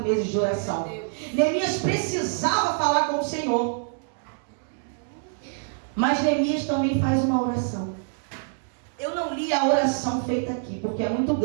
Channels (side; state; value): left; silent; digital silence